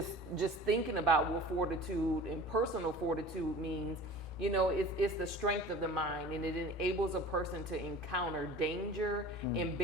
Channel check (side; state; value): both; normal; correlation 0.40